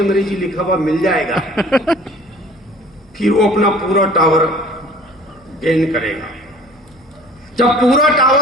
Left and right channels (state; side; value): normal; both; correlation 0.48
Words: लिखा हुआ मिल जाएगा। फिर वो अपना पूरा टावर गेन करेगा। जब पूरा